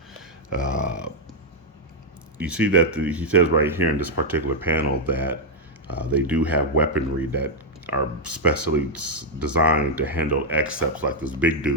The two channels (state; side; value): normal; both; correlation 0.00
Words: You see that he says right here in this particular panel that they do have weaponry that are specially designed to handle Excepts, like this big